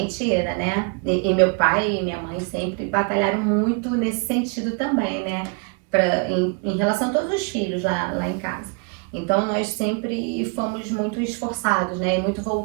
tira, né? E meu pai e minha mãe sempre batalharam muito nesse sentido também, né? Em relação a todos os filhos lá em casa. Então, nós sempre fomos muito esforçados, né? E muito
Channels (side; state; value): left; quieter; 34.8 dB